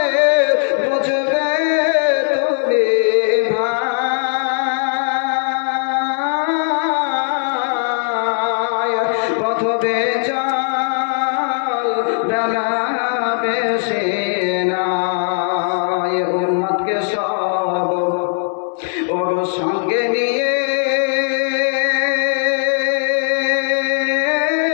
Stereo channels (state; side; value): silent; right; digital silence